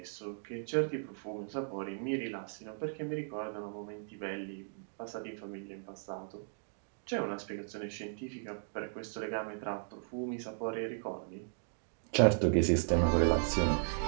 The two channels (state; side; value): silent; left; digital silence